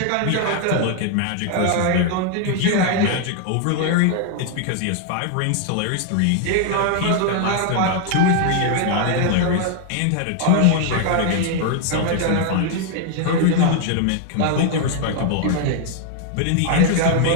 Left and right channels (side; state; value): both; different; correlation 0.00